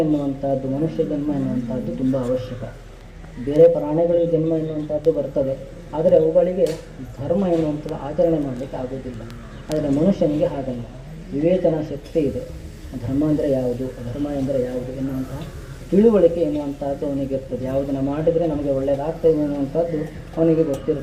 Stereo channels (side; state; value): both; identical; correlation 1.00